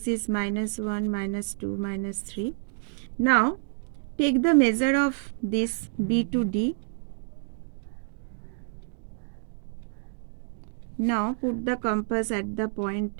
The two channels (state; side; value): silent; left; digital silence